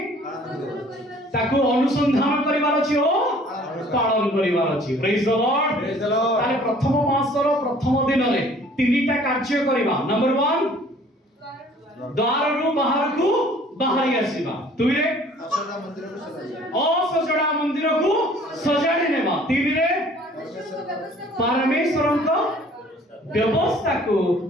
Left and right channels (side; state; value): both; normal; correlation 0.53